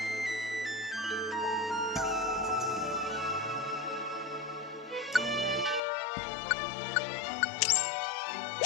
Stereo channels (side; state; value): right; drops out; at 5.8 s